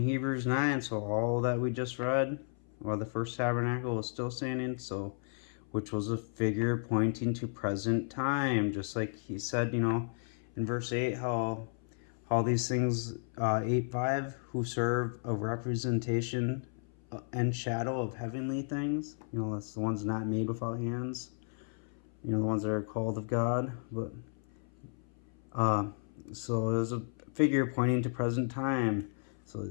9, so all that we just read, while the first tabernacle was still standing, so which was a figure pointing to present time. Just like he said, in verse 8, how these things, 8:5, who serve a representation and shadow of heavenly things. That's the ones not made without hands. The ones that are called of God. But so it was a figure pointing to present time. So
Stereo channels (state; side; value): silent; right; 55 dB below the other